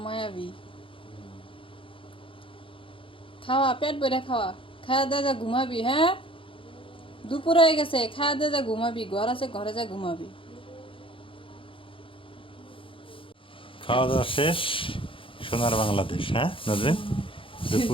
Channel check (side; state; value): right; late; 0.25 ms